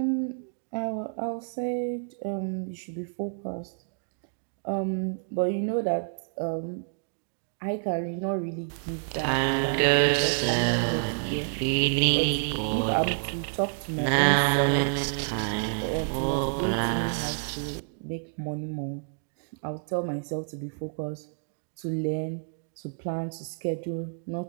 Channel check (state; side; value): silent; left; digital silence